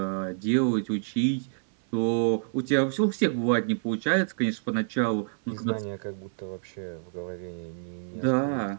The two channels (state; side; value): silent; left; 59 dB below the other